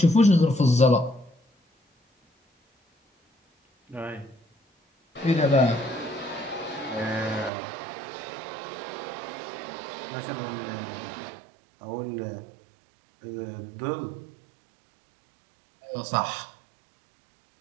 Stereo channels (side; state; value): left; drops out; at 7.5 s